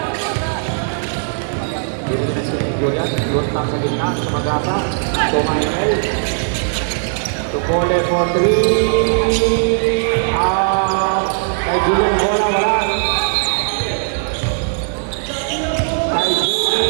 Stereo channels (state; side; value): silent; left; 60 dB below the other